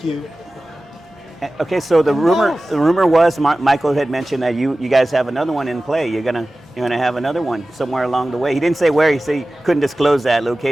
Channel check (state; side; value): normal; both; correlation 0.96